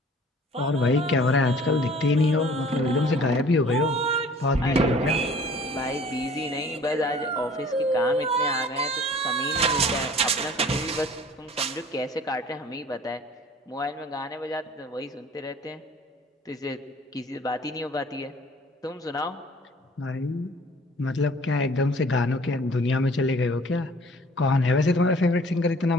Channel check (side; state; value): both; normal; correlation 0.50